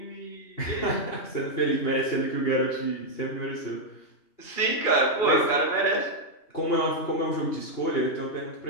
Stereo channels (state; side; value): late; right; 2.8 ms